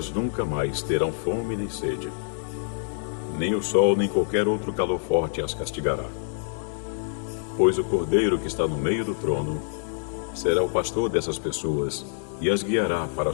nunca mais terão fome nem sede. Nem o sol nem qualquer outro calor forte as castigará. Pois o Cordeiro que está no meio do trono será o pastor dessas pessoas e as guiará para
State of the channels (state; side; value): silent; right; digital silence